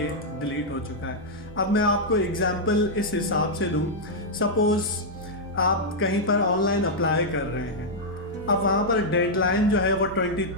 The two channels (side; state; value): both; normal; correlation -0.05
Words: डिलीट हो चुका है। अब मैं आपको एग्जांपल इस हिसाब से दूँ, सपोज़ आप कहीं पर ऑनलाइन अप्लाई कर रहे हैं, अब वहाँ पर डेडलाइन जो है वो